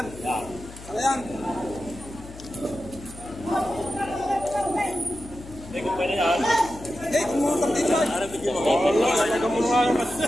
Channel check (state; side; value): noise; left; hum, 16 dB below the sound